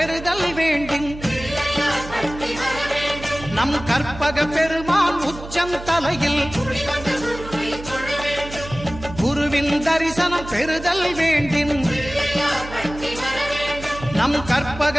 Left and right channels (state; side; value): noise; right; hum, 13 dB below the sound